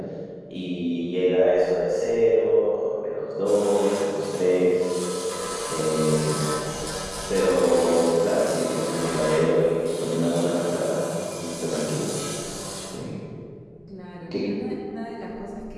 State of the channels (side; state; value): both; identical; correlation 1.00